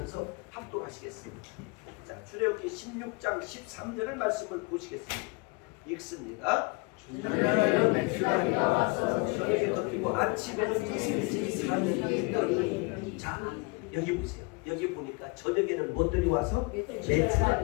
합독하시겠습니다. 자, 출애굽기 16장 13절을 말씀을 보시겠습니다. 읽습니다. 저녁에는 메추라기가 와서 저녁에 덮이고 아침에는 이슬이 사늘이 있더니. 자, 여기 보세요. 여기 보니까 저녁에는 무엇들이 와서?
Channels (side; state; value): right; quieter; 28.3 dB